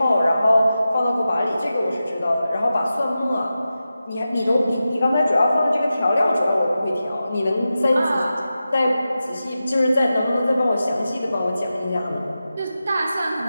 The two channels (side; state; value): both; inverted; correlation -0.92